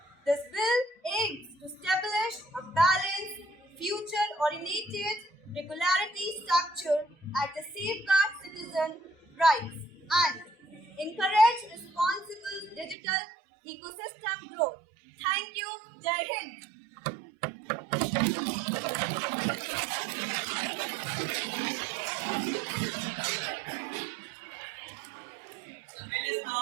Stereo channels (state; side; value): drops out; left; at 13.0 s